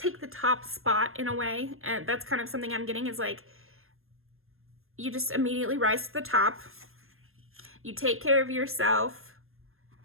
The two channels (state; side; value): late; left; 0.61 ms